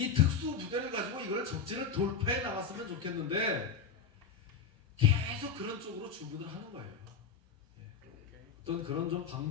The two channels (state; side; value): quieter; right; 5.9 dB